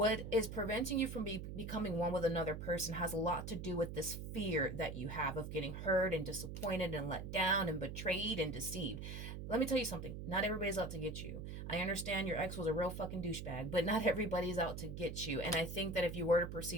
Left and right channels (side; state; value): right; noise; hum, 7 dB below the sound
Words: is preventing you from becoming one with another person has a lot to do with this fear that you have of getting hurt and disappointed and let down and betrayed and deceived. Let me tell you something. Not everybody's out to get you. I understand your ex was a real fucking douchebag, but not everybody's out to get you. And I think that if you were to